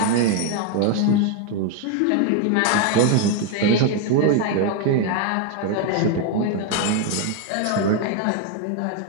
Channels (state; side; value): different; both; correlation 0.01